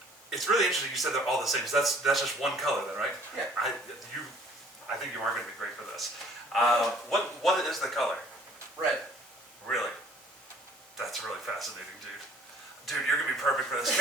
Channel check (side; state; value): both; normal; correlation 0.55